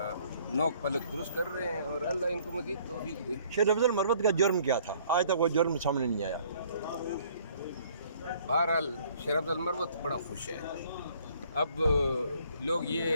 नोक पलक दुरुस्त कर रहे हैं और अल्लाह इनको मज़ीद तौफीक दे। शेर अफजल मरवत का जुर्म क्या था? आज तक वो जुर्म सामने नहीं आया। बहरहाल शेर अफजल मरवत बड़ा खुश है। अब लोग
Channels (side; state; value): both; inverted; correlation -0.60